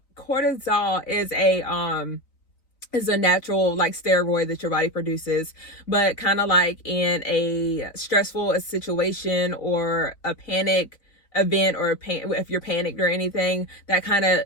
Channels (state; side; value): late; right; 3.9 ms